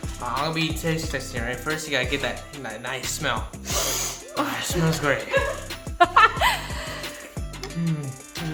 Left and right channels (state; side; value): identical; both; correlation 1.00